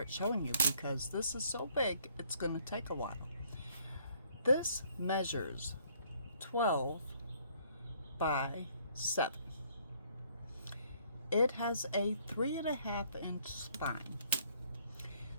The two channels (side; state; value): both; inverted; correlation -0.64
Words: showing you, because this is so big it's going to take a while. This measures 12 by 7. It has a 3.5-inch spine.